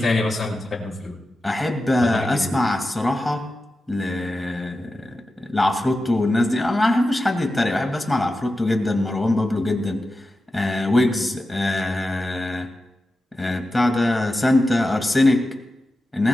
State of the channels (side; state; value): both; normal; correlation 0.92